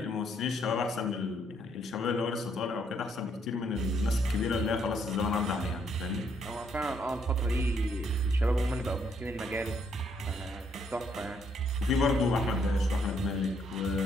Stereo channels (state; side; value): normal; both; correlation 0.71